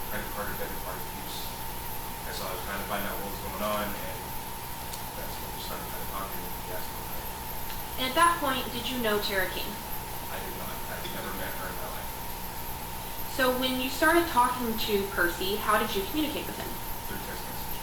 credit card or debit card abuse. And so I was trying to find out what was going on, and that's when we started kind of talking, and he asked for a ride. And at that point, did you know Tara King? I did not. I had never met her in my life. So when you started talking to Percy, how did you communicate with him? Through text message.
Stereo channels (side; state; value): both; identical; correlation 1.00